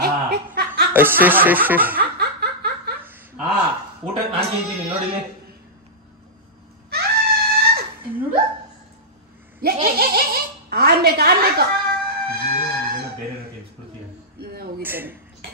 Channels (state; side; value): normal; both; correlation -0.13